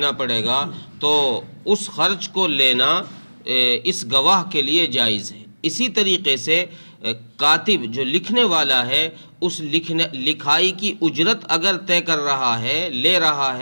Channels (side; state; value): both; inverted; correlation -1.00